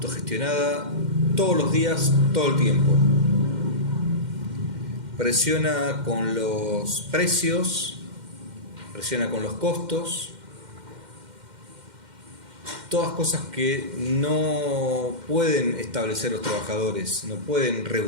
todos los días, todo el tiempo. Presiona con los precios, presiona con los costos, todas cosas que no pueden establecer los trabajadores, no pueden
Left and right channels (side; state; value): left; late; 2.1 ms